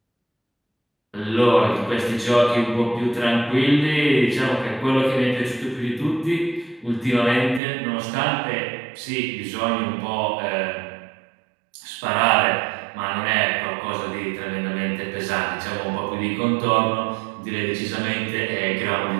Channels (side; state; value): left; drops out; at 7.6 s